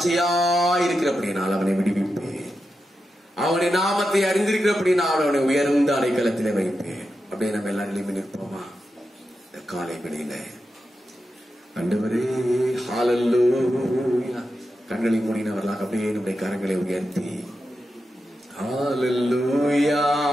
இருக்கிறபடியால் அவனை விடுவிப்பேன், அவனை நாமத்தை அறிந்திருக்கிறபடியால் அவனை உயர்ந்த அடைக்கலத்திலே வைப்பேன். அப்படியே நம்ம எல்லாரும் நிற்போமா இந்த காலை வேளையில? ஆண்டவரே ஹalleluya. கண்களை மூடினவர்களாக அப்படியே நம்முடைய கரங்களை உயர்த்தி ஹalleluya.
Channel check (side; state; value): both; normal; correlation 0.89